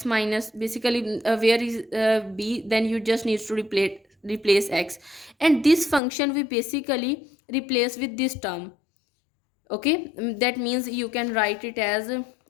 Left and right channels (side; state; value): right; drops out; at 6.0 s